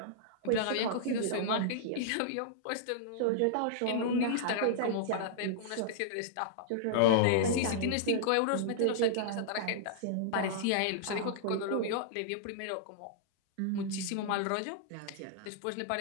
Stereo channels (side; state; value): both; different; correlation -0.01